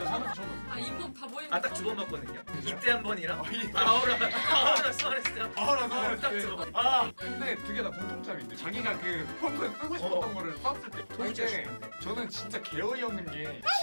살면서 처음 봤어요. 인공 다 보이는. 딱 2번 봤거든요. 이때 한 번이랑 이- 아우라 수원했을 때 한 번. 아나 딱 두 번. 근데 두 개 다 공통점인데 자기가 그 평소에 쓰고 싶었던 거를 썼을 때 이제 저는 진짜 개어이 없는 게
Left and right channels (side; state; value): both; inverted; correlation -1.00